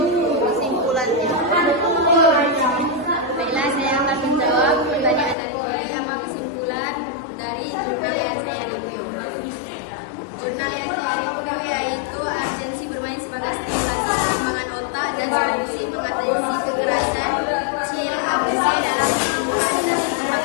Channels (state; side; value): drops out; right; at 5.4 s